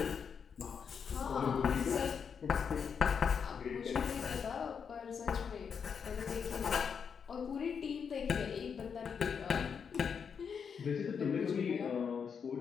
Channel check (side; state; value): right; quieter; 6.6 dB